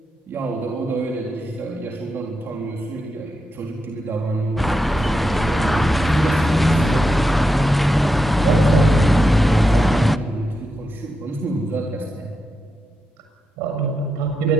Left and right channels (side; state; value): both; normal; correlation 0.87